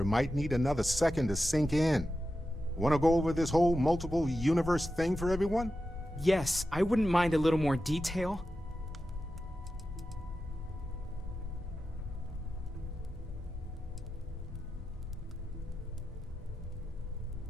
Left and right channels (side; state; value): both; normal; correlation 0.91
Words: might need another second to sink in. Want to go over this whole multiple universe thing for everyone? Yes, I wouldn't mind a little more detail.